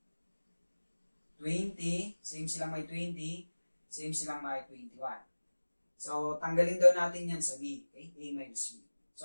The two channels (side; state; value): both; inverted; correlation -1.00